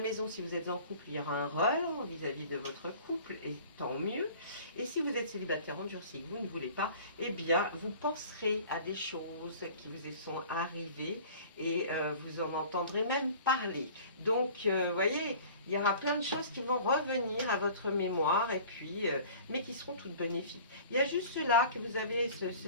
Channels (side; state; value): both; inverted; correlation -0.45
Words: si vous êtes en couple, il y aura un relent vis-à-vis de votre couple, et tant mieux. Et si vous êtes célibataire endurci, que vous ne voulez pas, eh bien, vous penserez à des choses qui vous sont arrivées et vous en entendrez même parler. Donc, vous voyez, il y aura plein de choses qui vont revenir à votre mémoire, et puis, mais qui seront toutes bénéfiques. Il y a juste là que vous avez